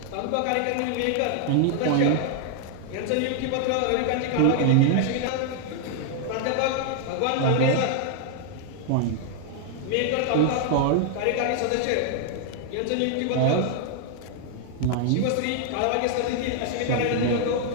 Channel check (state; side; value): different; both; correlation 0.00